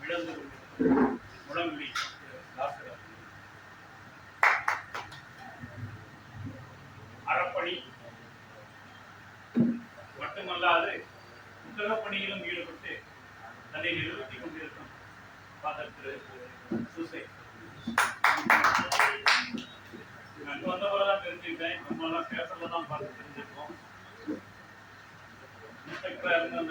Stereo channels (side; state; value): both; identical; correlation 1.00